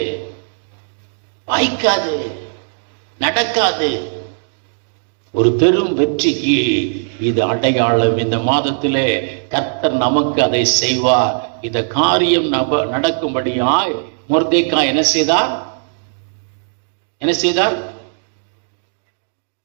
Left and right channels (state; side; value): silent; left; digital silence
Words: வாய்க்காது, நடக்காது. ஒரு பெரும் வெற்றிக்கு இது அடையாளம். இந்த மாதத்திலே கர்த்தர் நமக்கு அதை செய்வார். இந்த காரியம் நடக்கும்படியாய் மொர்தெக்காய் என்ன செய்தார்? என்ன செய்தார்?